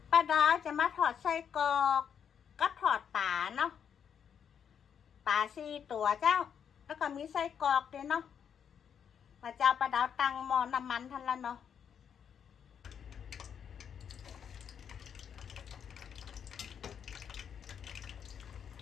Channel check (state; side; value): quieter; right; 7.9 dB